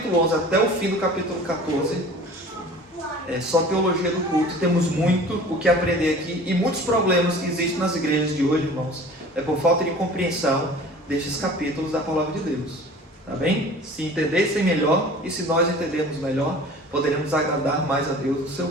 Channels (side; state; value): both; normal; correlation 0.44